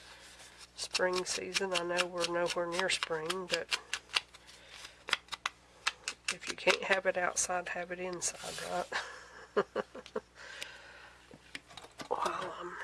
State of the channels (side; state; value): both; identical; correlation 1.00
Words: Spring season. I know we're nowhere near spring, but if you can't have it outside, have it inside, right? While I'm